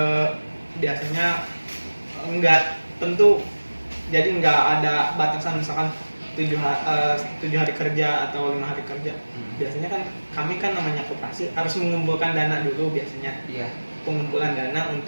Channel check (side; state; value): both; inverted; correlation -1.00